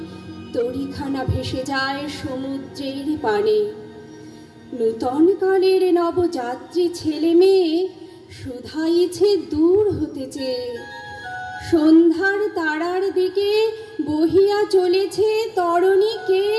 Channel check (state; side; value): identical; both; correlation 1.00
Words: তরিখানা ভেসে যায় সমুদ্রের পানে। নূতন কালের নবযাত্রী ছেলে মেয়ে শুধাইছে দূর হতে চেয়ে। সন্ধ্যার তারার দিকে বহিয়া চলেছে তরণী কে?